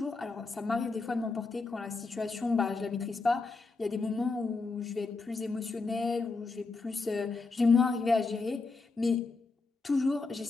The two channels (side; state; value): right; quieter; 3.9 dB